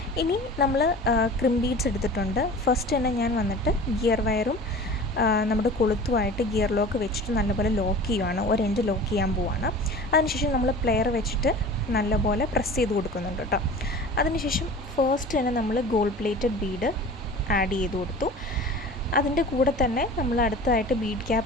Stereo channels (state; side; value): normal; both; correlation 0.39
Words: ഇനി നമ്മൾ ക്രിം ബീഡ്സ് എടുത്തിട്ടുണ്ട്. ഫസ്റ്റ് തന്നെ ഞാൻ വന്നിട്ട് ഗിയർ വയറും നമ്മുടെ കൊളുത്തുമായിട്ട് ഗിയർ ലോക്ക് വെച്ചിട്ട് നല്ലപോലെ ലോക്ക് ചെയ്യുവാണ്. ഒരു എൻഡ് ലോക്ക് ചെയ്യാൻ പോവാണ്. അതിനുശേഷം നമ്മൾ പ്ലെയർ വെച്ചിട്ട് നല്ലപോലെ പ്രസ് ചെയ്ത് കൊടുക്കുന്നുണ്ട് കേട്ടോ. അതിനുശേഷം ഫസ്റ്റ് തന്നെ നമ്മൾ ഗോൾഡ് പ്ലേറ്റഡ് ബീഡ് ആഡ് ചെയ്ത് കൊടുത്തു. അതിൻ്റെ കൂടെ തന്നെ നമ്മൾ അടുത്തതായിട്ട് ബീഡ്